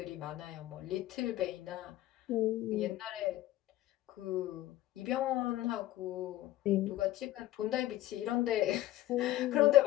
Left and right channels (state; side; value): quieter; right; 15.0 dB